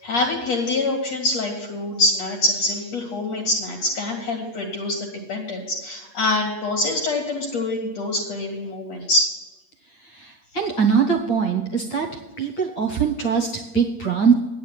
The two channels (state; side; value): late; right; 8.4 ms